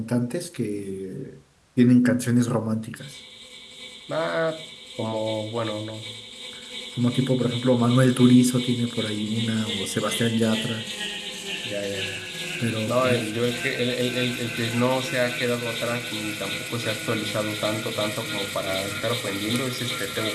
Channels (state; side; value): identical; both; correlation 1.00